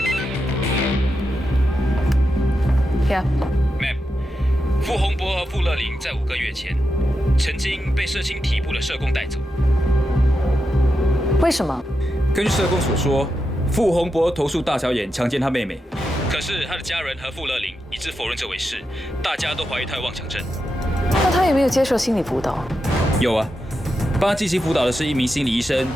！Ma'am， 傅洪博和傅乐玲在5个月前，曾经被社青体部的社工带走。为什么？根据社工所说，傅洪博投诉大小眼强奸他妹妹，可是他的家人和傅乐玲一致否认这回事，大家都怀疑他有妄想症。那他有没有接受心理辅导？有啊，帮他进行辅导的是一名心理医生，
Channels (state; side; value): normal; both; correlation 0.87